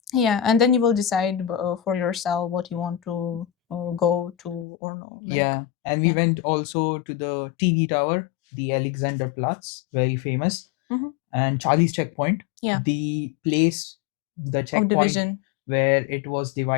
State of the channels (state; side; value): drops out; right; at 4.7 s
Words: Yeah, and then you will decide for yourself what you want to go to or no. Like, Yeah, and we yeah. went also to the TV tower, the Alexanderplatz, very famous, Hmm. and Charlie's checkpoint, Yeah, the place, the of checkpoint division. where it was